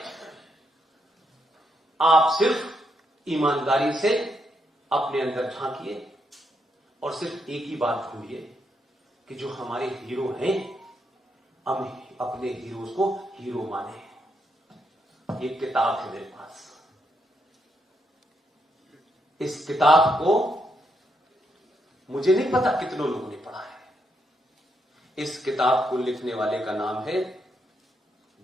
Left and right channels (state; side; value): normal; both; correlation 0.79